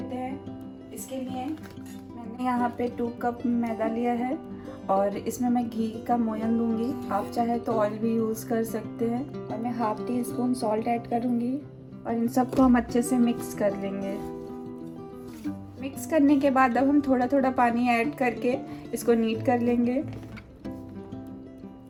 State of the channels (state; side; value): identical; both; correlation 1.00